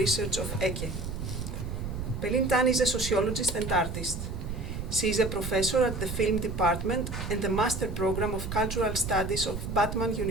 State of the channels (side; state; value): right; noise; rumble, 5 dB below the sound